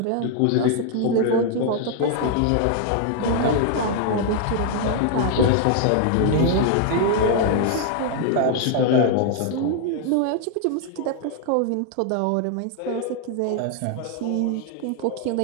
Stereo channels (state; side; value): different; both; correlation 0.00